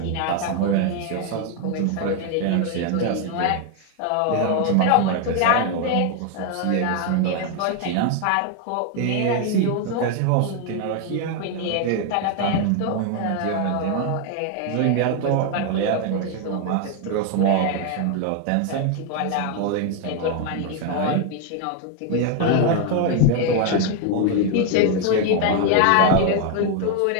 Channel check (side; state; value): both; different; correlation 0.01